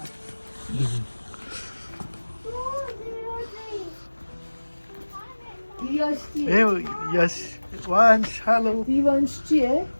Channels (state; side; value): inverted; both; correlation -1.00